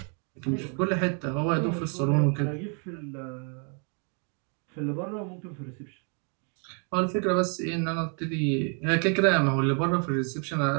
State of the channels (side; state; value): left; quieter; 39.3 dB